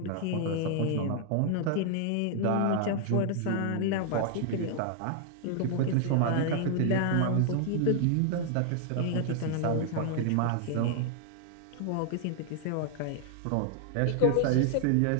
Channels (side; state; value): both; different; correlation 0.00